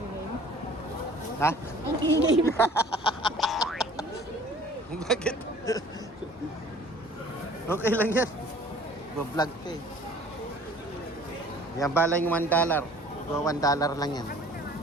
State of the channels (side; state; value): both; normal; correlation 0.50